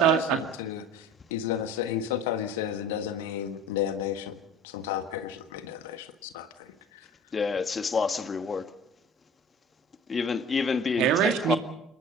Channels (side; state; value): both; normal; correlation 0.41